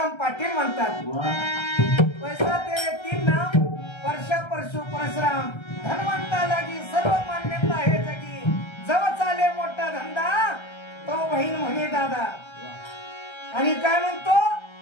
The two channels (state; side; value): late; right; 1.3 ms